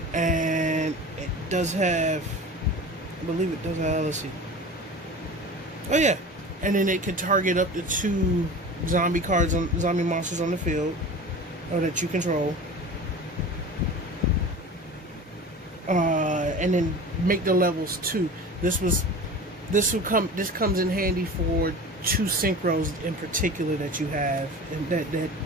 And it does have, I believe it does have, let's see. Oh yeah. And then it can target up to 2 zombie cards, zombie monsters on the field, or that you control. And then make the levels 2. This comes in handy for 2 synchros in particular that you have, and that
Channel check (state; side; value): normal; both; correlation 0.35